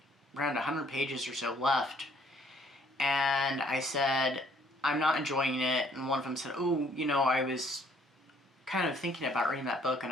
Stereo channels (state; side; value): normal; both; correlation 0.62